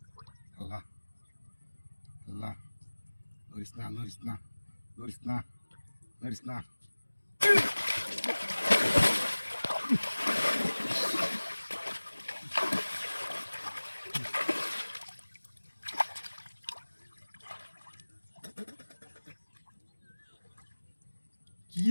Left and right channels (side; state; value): both; inverted; correlation -1.00